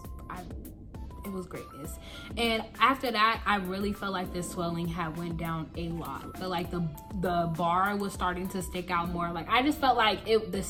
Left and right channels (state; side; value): identical; both; correlation 1.00